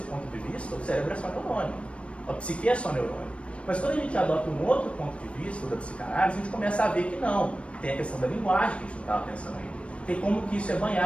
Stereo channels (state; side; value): late; right; 0.061 ms